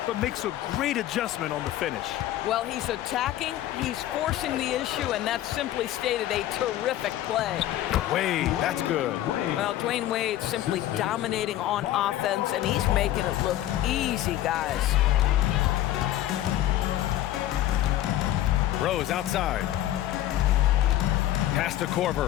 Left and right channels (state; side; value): quieter; right; 13.5 dB